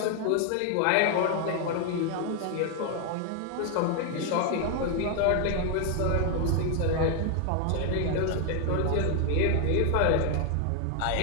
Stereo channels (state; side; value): different; both; correlation 0.00